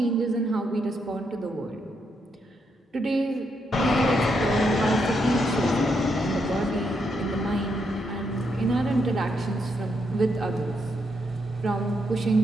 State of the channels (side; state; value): both; normal; correlation 0.79